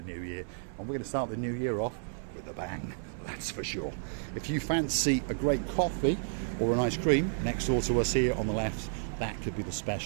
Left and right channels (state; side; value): silent; left; 57 dB below the other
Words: new year. And we're going to start the new year off with a bang, that's for sure. If you fancy a great coffee or an ice cream, next door to us here on the left, that could be the